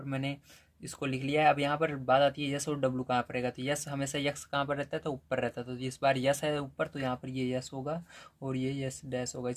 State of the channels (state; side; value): identical; both; correlation 1.00